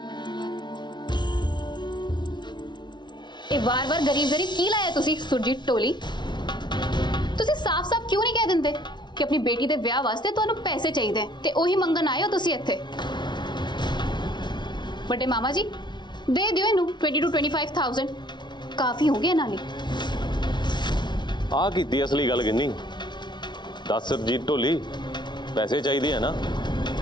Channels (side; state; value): right; late; 0.21 ms